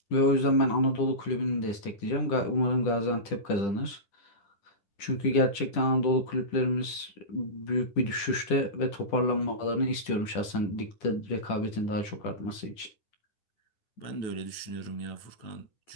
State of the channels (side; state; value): right; late; 10 ms